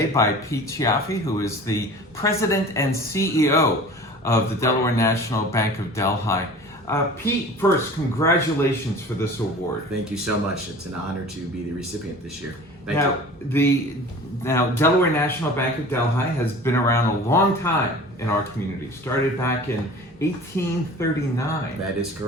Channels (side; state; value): both; normal; correlation 0.41